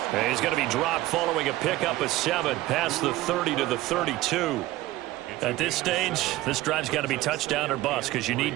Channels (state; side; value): quieter; left; 17.0 dB